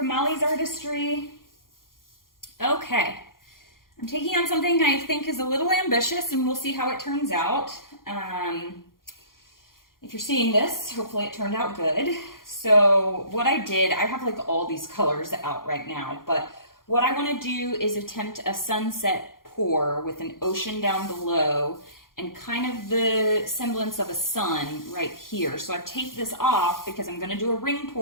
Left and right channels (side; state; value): right; late; 0.91 ms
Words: Molly's Artistry. Okay, I'm taking on something I think is a little ambitious and we'll see how it turns out. If you're seeing this, hopefully it turned out good. So what I did, I have like all these colors out right now, but what I want to do is attempt a sunset pour with an ocean down below and kind of the semblance of a sun right here. So I've taped this off because I'm gonna do a ring